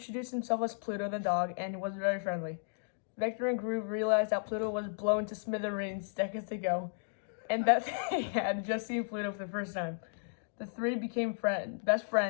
himself as Pluto the dog, and he was very friendly. Vector and Groot realized that Pluto was blown to smithereens seconds ago, and that they had just seen Pluto for the first time. The 3 became best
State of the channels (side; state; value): right; silent; digital silence